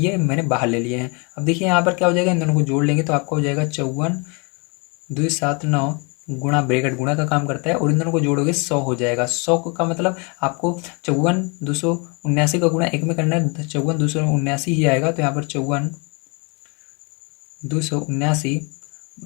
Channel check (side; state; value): right; quieter; 31.6 dB